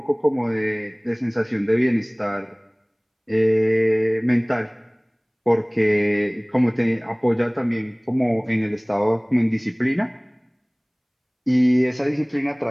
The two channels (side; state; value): both; identical; correlation 1.00